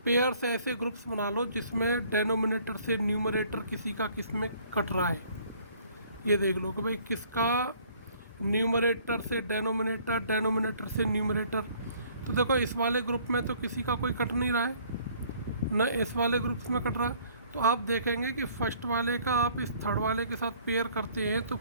पेयर से ऐसे ग्रुप्स बना लो जिसमें डेनोमिनेटर से न्यूमरेटर किसी का किस में कट रहा है। ये देख लो कि भाई किसका न्यूमरेटर से डेनोमिनेटर, डेनोमिनेटर से न्यूमरेटर। तो देखो इस वाले ग्रुप में तो किसी का कोई कट नहीं रहा है, न इस वाले ग्रुप्स में कट रहा है। तो आप देखेंगे कि फर्स्ट वाले का आप इस थर्ड वाले के साथ पेयर करते हैं तो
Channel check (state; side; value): inverted; both; correlation -0.58